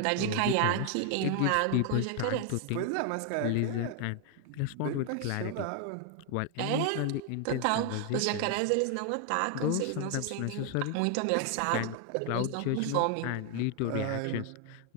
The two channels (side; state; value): both; different; correlation 0.00